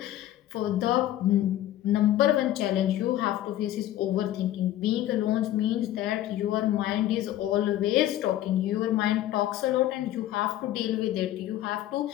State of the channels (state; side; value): quieter; right; 13.3 dB